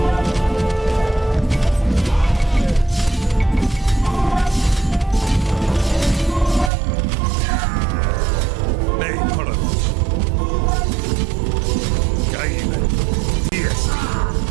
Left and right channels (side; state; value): left; drops out; at 6.7 s